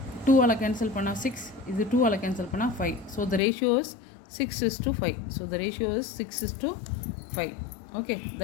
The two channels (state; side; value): drops out; right; at 3.4 s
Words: 2ஆல் கேன்சல் பண்ணால் 6, இது 2ஆல் கேன்சல் பண்ணால் 5. So the ratio is 6:5. So the ratio is 6:5. Okay,